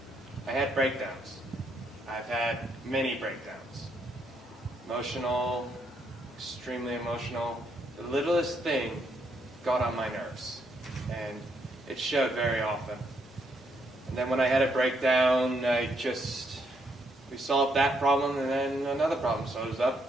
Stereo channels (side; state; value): both; normal; correlation 0.75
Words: I had breakdowns. I've had many breakdowns. Emotional, extremely emotional. The littlest thing got on my nerves, and it showed very often. And then when I had a breakdown, we solved that problem, and then another problem shows